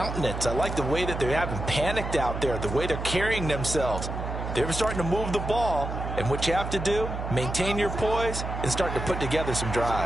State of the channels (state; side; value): noise; right; hum, 5 dB below the sound